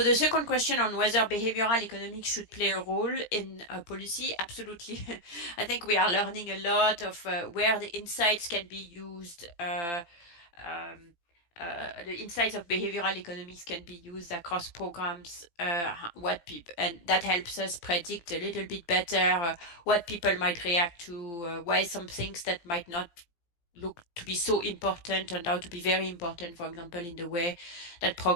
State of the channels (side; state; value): right; late; 17 ms